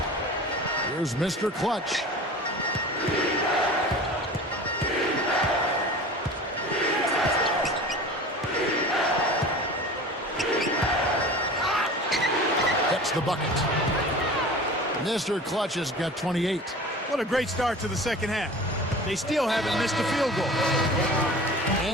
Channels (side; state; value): both; normal; correlation 0.38